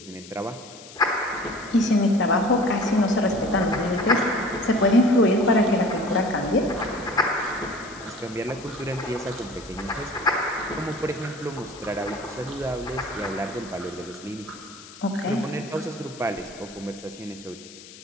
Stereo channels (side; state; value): left; noise; hiss, 18 dB below the sound